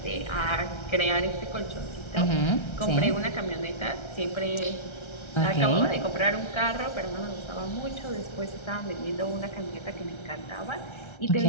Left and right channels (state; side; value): late; right; 1.3 ms